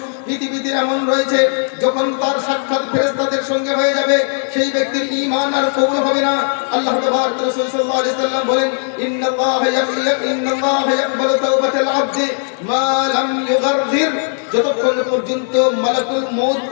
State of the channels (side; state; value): right; silent; 57 dB below the other